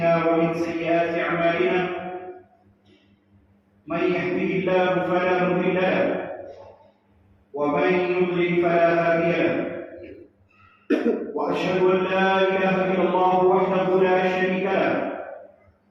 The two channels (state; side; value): identical; both; correlation 1.00